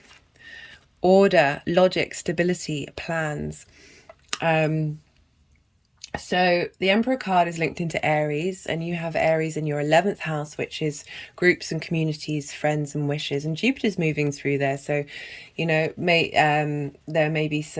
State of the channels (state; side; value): identical; both; correlation 1.00